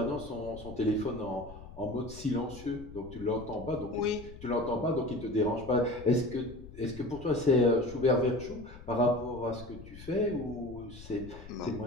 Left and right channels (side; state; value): left; noise; rumble, 15 dB below the sound